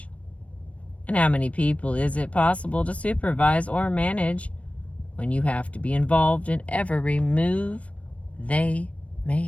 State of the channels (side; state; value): right; late; 0.064 ms